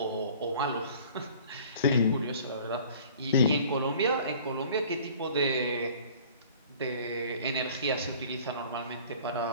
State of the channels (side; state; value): both; inverted; correlation -0.49